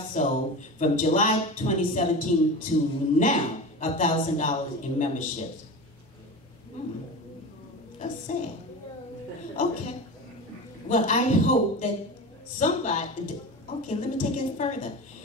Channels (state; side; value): normal; both; correlation 0.29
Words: sold from July 2017 to now $1,000 in memberships? That's sad. Okay. Well, I hope that somebody, okay, let me take it further.